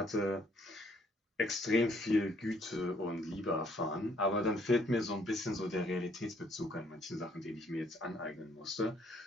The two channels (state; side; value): normal; both; correlation 0.66